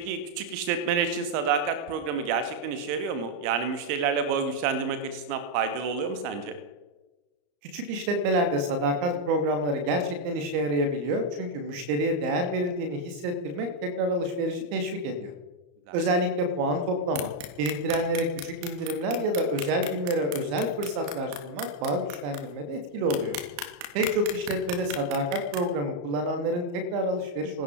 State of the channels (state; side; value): late; left; 34 ms